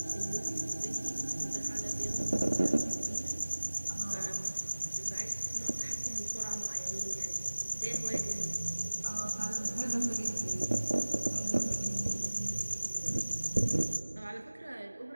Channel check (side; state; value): both; inverted; correlation -1.00